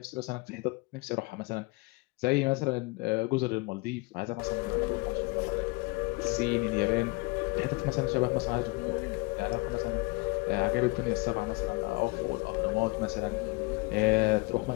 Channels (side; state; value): right; quieter; 25.4 dB